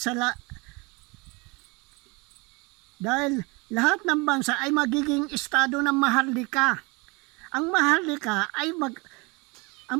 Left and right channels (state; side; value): quieter; left; 27.3 dB